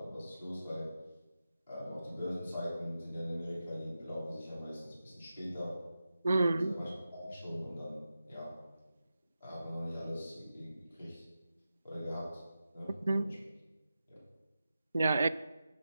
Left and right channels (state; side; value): inverted; both; correlation -0.92